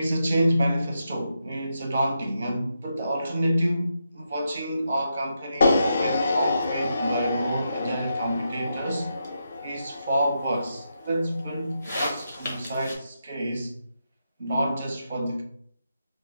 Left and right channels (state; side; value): inverted; both; correlation -0.84